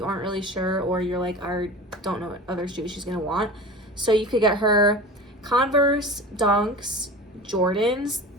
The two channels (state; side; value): normal; both; correlation 0.35